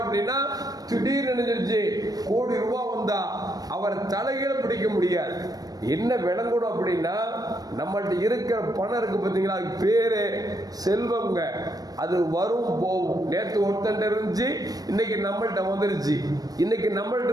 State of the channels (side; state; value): left; late; 0.18 ms